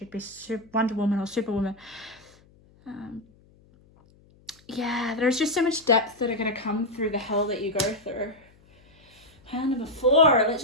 be Wonder Woman or Superwoman. Yeah, there's just so much depth that are going to come through the hell that you go through. Hand number 4. Let's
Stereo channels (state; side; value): noise; left; hum, 29 dB below the sound